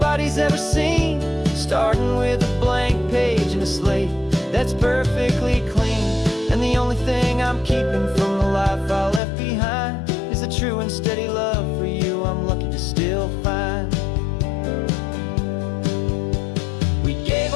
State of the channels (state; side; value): drops out; right; at 9.2 s